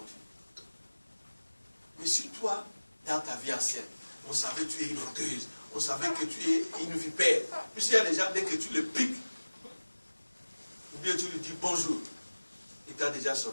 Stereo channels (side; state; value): both; inverted; correlation -1.00